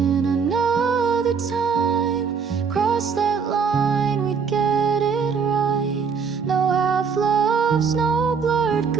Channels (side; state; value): left; quieter; 6.0 dB